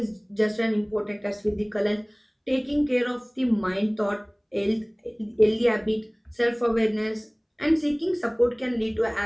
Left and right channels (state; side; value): identical; both; correlation 1.00